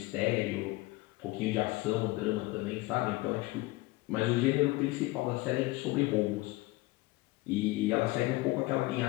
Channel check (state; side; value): quieter; right; 20.4 dB